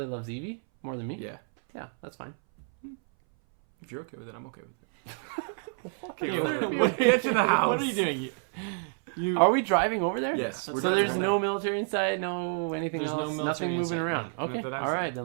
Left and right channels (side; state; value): left; silent; 59 dB below the other